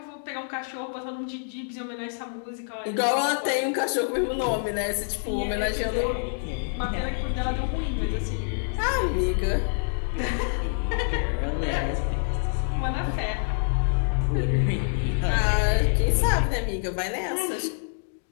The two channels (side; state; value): right; silent; digital silence